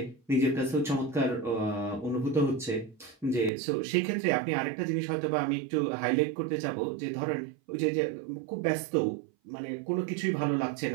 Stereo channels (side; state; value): left; drops out; at 3.5 s